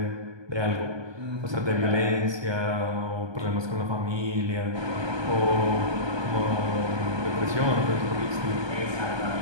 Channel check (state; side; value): late; left; 1.2 ms